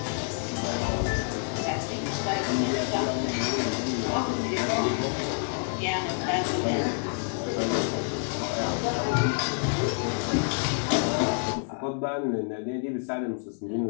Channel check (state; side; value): silent; right; 59 dB below the other